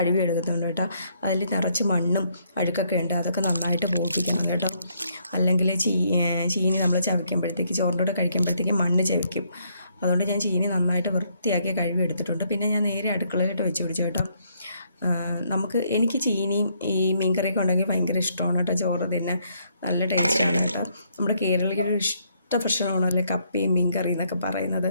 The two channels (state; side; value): inverted; both; correlation -0.71